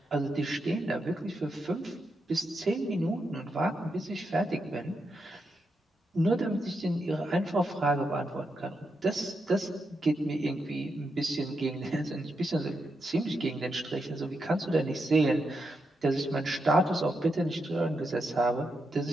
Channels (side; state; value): both; normal; correlation 0.84